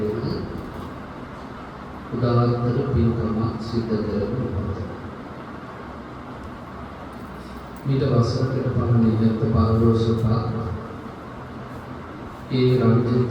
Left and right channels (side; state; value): both; identical; correlation 1.00